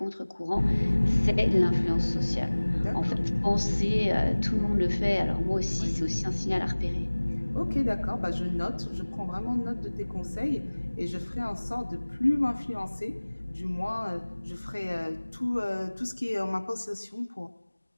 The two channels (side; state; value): both; inverted; correlation -1.00